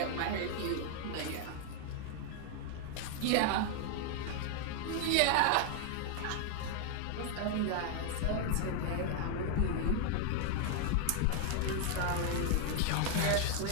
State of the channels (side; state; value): both; different; correlation 0.00